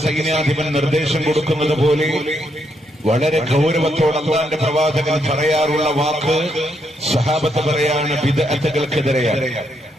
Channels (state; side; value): normal; both; correlation 0.77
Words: സൈന്യാധിപൻ നിർദ്ദേശം കൊടുക്കുന്നത് പോലെ വളരെ ഗൗരവത്തോടെ അല്ലാഹുവിന്റെ പ്രവാചകൻ പറയാറുള്ള വാക്ക് സഹാബത്ത് പറയാണ് ബിദ്അത്തുകൾക്കെതിരെയാണ്.